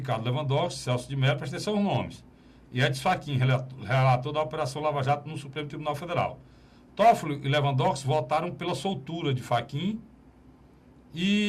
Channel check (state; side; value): identical; both; correlation 1.00